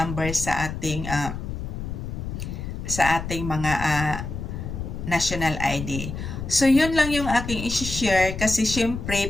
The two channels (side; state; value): left; noise; rumble, 6 dB below the sound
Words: sa ating mga national ID. So, yun lang yung aking isi-share kasi